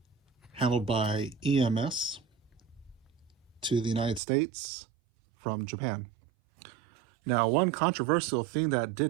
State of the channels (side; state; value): left; drops out; at 4.2 s